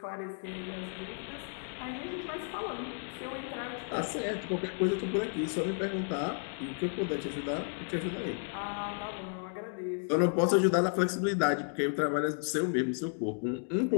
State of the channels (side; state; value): right; silent; 56 dB below the other